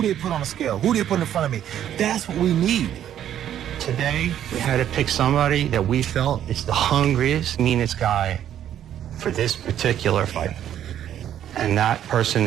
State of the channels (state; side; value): quieter; left; 10.6 dB